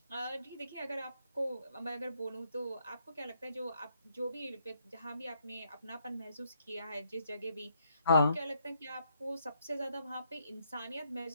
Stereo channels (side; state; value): both; inverted; correlation -0.73